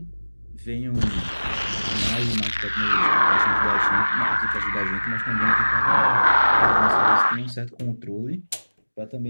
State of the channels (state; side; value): inverted; both; correlation -1.00